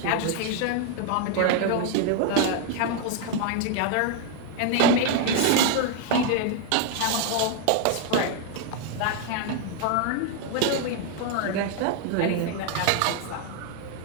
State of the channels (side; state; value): both; different; correlation 0.01